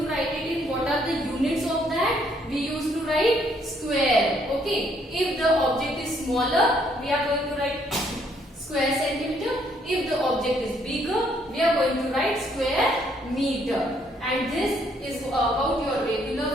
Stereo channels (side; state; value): both; normal; correlation 0.68